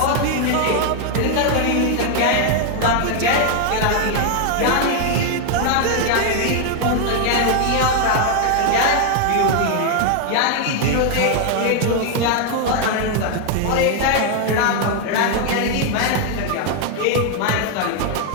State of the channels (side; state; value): both; different; correlation 0.00